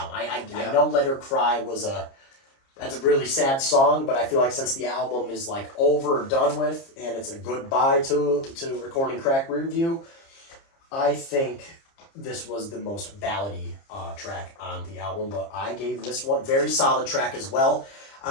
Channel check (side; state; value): right; late; 30 ms